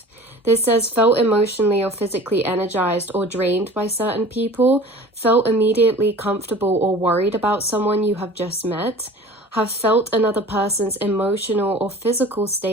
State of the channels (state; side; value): normal; both; correlation 0.42